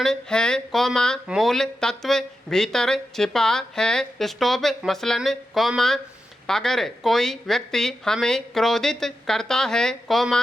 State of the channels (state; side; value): normal; both; correlation 0.89